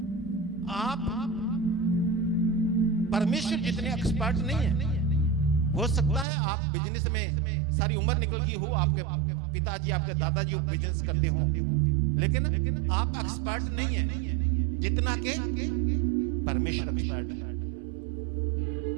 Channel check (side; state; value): left; drops out; at 6.2 s